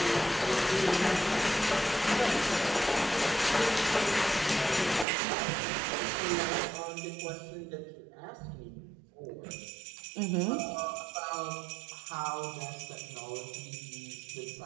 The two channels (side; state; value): left; drops out; at 5.1 s